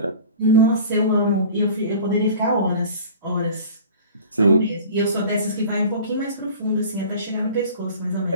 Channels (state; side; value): inverted; both; correlation -0.42